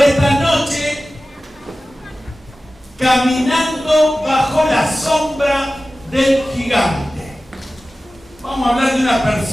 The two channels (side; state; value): both; normal; correlation 0.96